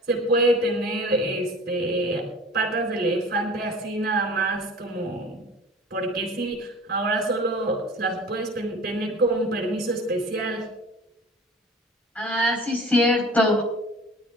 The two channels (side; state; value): both; normal; correlation 0.42